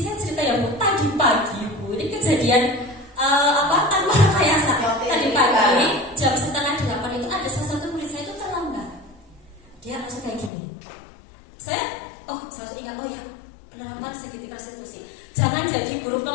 saya cerita ya Bu, tadi pagi Bu, ini kejadian tanpa rekayasa. Tadi pagi jam 7:30 itu ada salah satu murid saya itu terlambat. Dia langsung kayak gini. Saya langsung ingat, oh ya, penerapan segitiga restitusi. Jangan jadi guru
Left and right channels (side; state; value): right; drops out; at 10.5 s